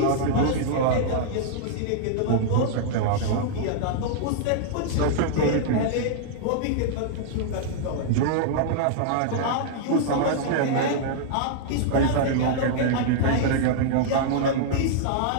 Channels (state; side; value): different; both; correlation -0.01